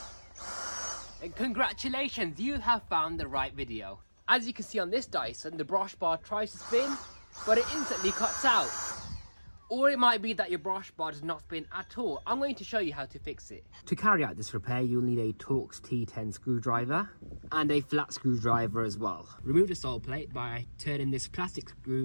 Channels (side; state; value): both; inverted; correlation -1.00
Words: then congratulations, you have found the right video. As you can see on this Dyson, the brush bar tries to spin, but it instantly cuts out. Or it might be that your brush bar does not spin at all. I'm going to show you how to fix it. To carry out this repair, you'll need a Torx T10 screwdriver and a flat screwdriver as well. Remove the sole plate by turning this plastic